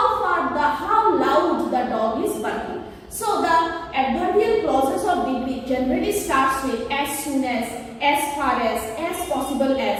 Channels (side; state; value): both; identical; correlation 1.00